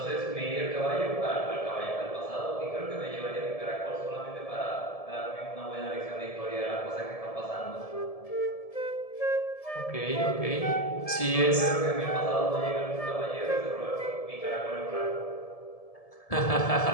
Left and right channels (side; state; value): right; late; 1.7 ms